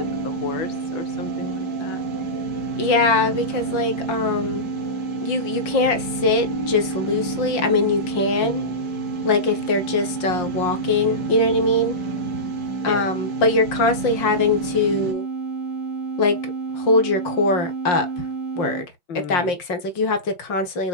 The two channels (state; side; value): late; right; 5.6 ms